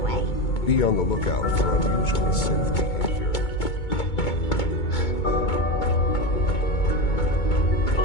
Be on the lookout for unusual synth behavior.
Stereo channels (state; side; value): late; right; 2.2 ms